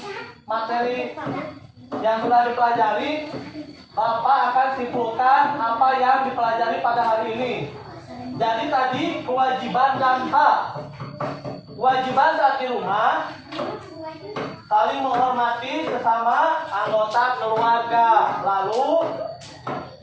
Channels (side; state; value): both; identical; correlation 1.00